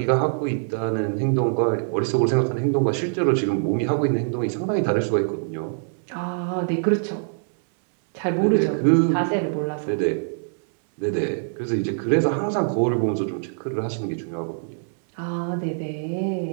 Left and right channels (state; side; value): silent; left; digital silence